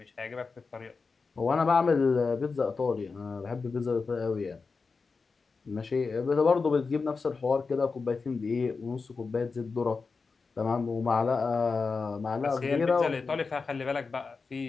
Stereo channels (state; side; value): quieter; right; 4.6 dB